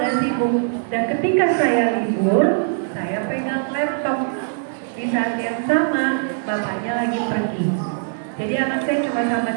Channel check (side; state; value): left; silent; 65 dB below the other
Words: sibuk dan ketika saya libur, saya pegang laptop. Di saat yang sama, bapaknya lagi pergi. Jadi anak saya cuma sama